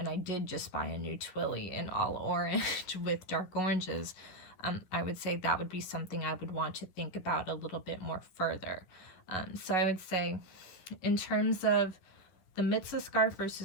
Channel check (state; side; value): late; right; 11 ms